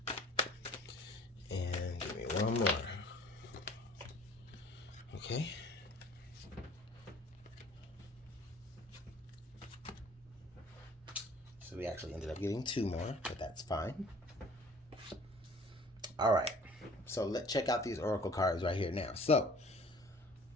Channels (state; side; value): normal; both; correlation 0.50